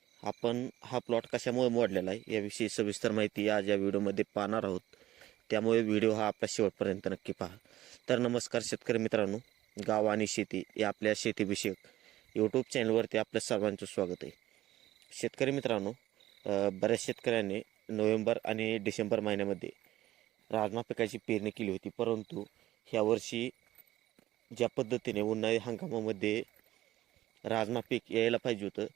आपण हा प्लॉट कशामुळे मोडलेला आहे याविषयी सविस्तर माहिती आज या व्हिडिओमध्ये पाहणार आहोत. त्यामुळे व्हिडिओ हा आपल्या शेवटपर्यंत नक्की पहा. तर नमस्कार शेतकरी मित्रांनो, गाव आणि शेती या आपल्या शेतीविषयक यूट्यूब चॅनलवरती आपल्या सर्वांचं स्वागत आहे. शेतकरी मित्रांनो, बऱ्याच शेतकऱ्यांनी नोव्हेंबर आणि डिसेंबर महिन्यामध्ये राजमा पिकाची पेरणी केली होती, परंतु ह्यावर्षी ज्या पद्धतीने उन्हाळी हंगामामध्ये राजमा पीक यायला पाहिजे होतं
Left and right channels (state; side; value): quieter; left; 14.9 dB